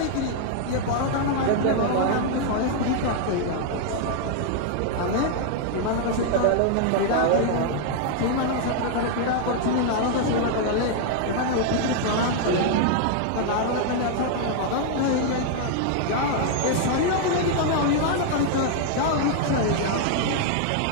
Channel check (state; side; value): different; both; correlation 0.00